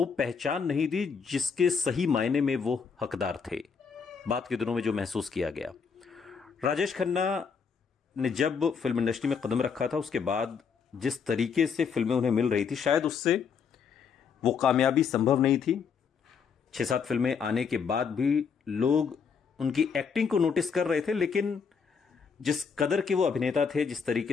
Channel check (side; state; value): right; quieter; 6.1 dB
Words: पहचान नहीं दी जिसके सही मायने में वो हकदार थे। बात के दिनों में जो महसूस किया गया, राजेश खन्ना ने जब फिल्म इंडस्ट्री में कदम रखा था, उसके बाद जिस तरीके से फिल्में उन्हें मिल रही थी, शायद उससे वो कामयाबी संभव नहीं थी। 6-7 फिल्में आने के बाद भी लोग उनकी एक्टिंग को नोटिस कर रहे थे, लेकिन जिस कदर के वो अभिनेता थे, जिस